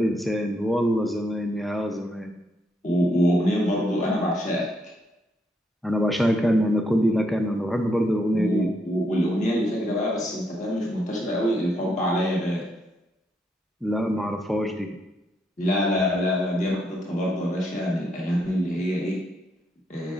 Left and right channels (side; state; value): both; normal; correlation 0.76